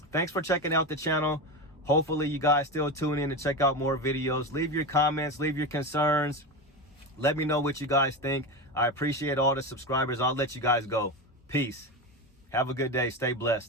thanks for checking out the channel. Hopefully you guys still tune in to check out more videos. Leave your comments, leave your concerns. Let me know what you guys think. I appreciate all the subscribers. I'll let you guys go. Peace. Have a good day. Stay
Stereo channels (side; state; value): both; normal; correlation 0.20